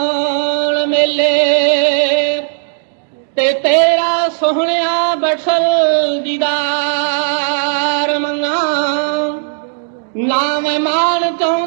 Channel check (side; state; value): left; silent; digital silence